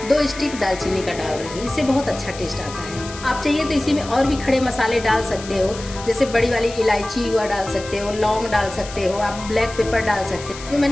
2 स्टिक दालचीनी का डाल रही हूँ, इससे बहुत अच्छा टेस्ट आता है। आप चाहिए तो इसी में और भी खड़े मसाले डाल सकते हो, जैसे बड़ी वाली इलायची हुआ डाल सकते हो, लौंग डाल सकते हो, आप ब्लैक पेपर डाल सकते हो। जो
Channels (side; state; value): left; noise; hiss, 14 dB below the sound